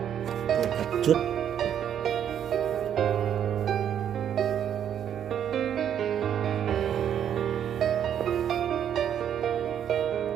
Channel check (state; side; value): quieter; left; 9.4 dB